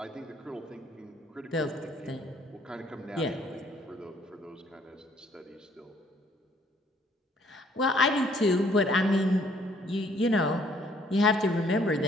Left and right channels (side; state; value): both; normal; correlation 0.63